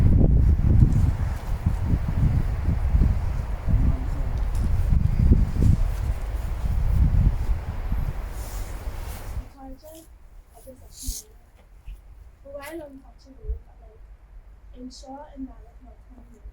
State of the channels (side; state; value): both; identical; correlation 1.00